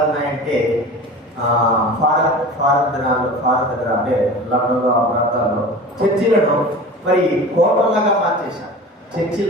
ఉన్నాయంటే ఫారెన్ దగ్గర అంటే లండన్లో ఆ ప్రాంతాల్లో చర్చిలను మరి హోటల్లాగా మార్చేశారు.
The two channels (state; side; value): normal; both; correlation 0.36